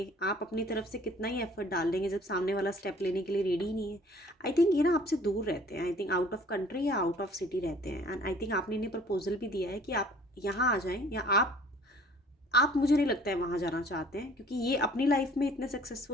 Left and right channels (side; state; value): both; normal; correlation 0.52